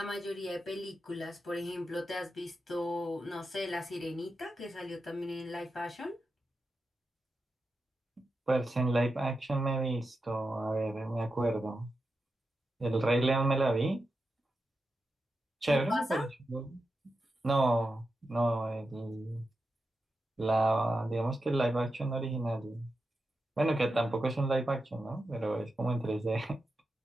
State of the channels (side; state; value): both; normal; correlation 0.89